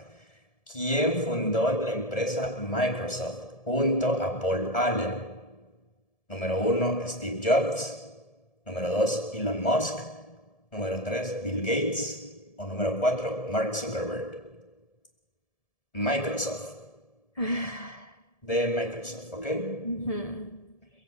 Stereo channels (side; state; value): right; late; 1.7 ms